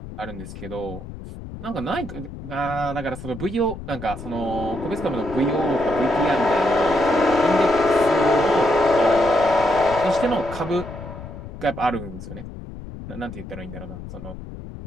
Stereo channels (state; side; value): noise; left; rumble, 12 dB below the sound